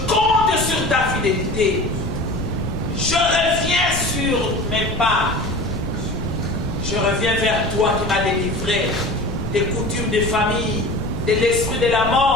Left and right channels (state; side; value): noise; left; rumble, 8 dB below the sound